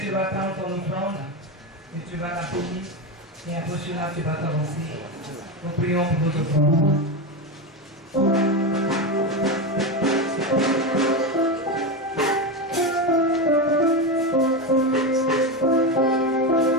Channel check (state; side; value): normal; both; correlation 0.15